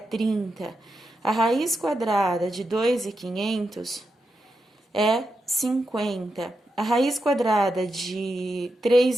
A raiz quadrada de 2.500 é 50. A raiz quadrada de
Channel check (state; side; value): normal; both; correlation 0.86